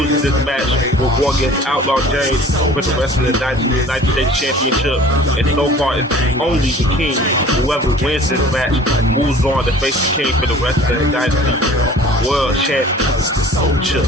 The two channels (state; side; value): normal; both; correlation 0.46